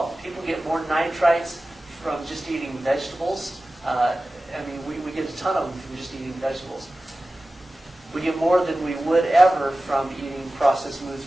People get more nitrites from just eating vegetables. We get a ton of them from just eating vegetables. We get more than we would ever from eating processed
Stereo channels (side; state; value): both; normal; correlation 0.96